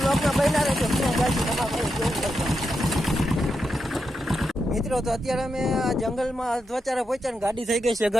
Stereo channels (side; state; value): both; normal; correlation 0.85